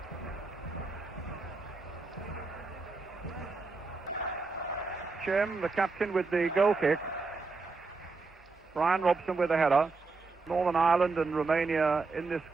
Jim, the captain, with the goal kick. Bryan Robson with a header. Northern Ireland and Romania in this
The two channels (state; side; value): quieter; left; 4.0 dB